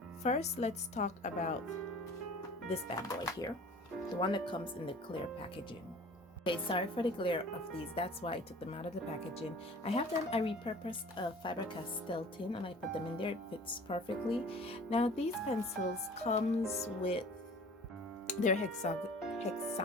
First, let's talk about this bad boy here, the one that comes in the clear packaging. Okay, sorry for the glare of these, that's why I took them out of the packaging. I repurposed a Faber-Castell tin and I put them in there. It fits perfectly. Now these pencils comes with, they're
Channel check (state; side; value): normal; both; correlation 0.45